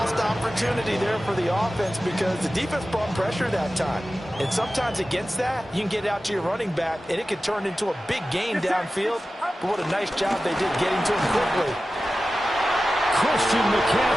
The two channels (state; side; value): normal; both; correlation 0.95